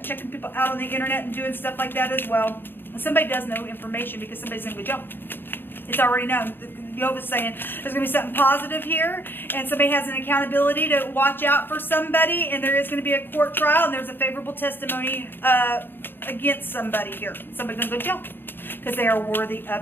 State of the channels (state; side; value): late; right; 0.097 ms